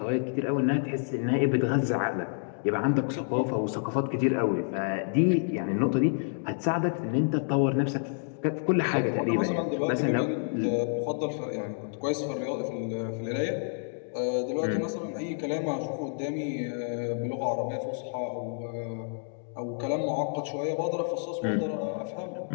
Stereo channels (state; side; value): silent; right; digital silence